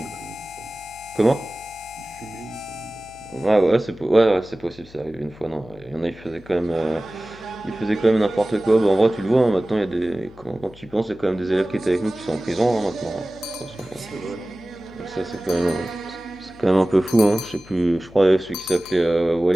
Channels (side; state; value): left; noise; hum, 23 dB below the sound